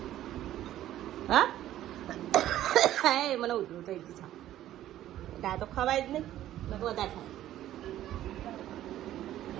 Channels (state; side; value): quieter; left; 13.1 dB